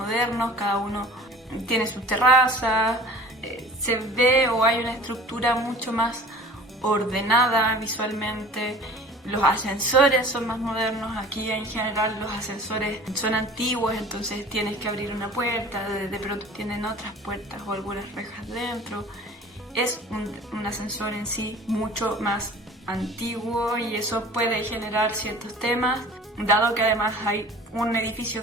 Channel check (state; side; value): normal; both; correlation 0.44